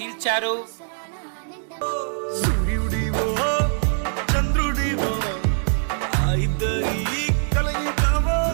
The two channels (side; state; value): left; silent; digital silence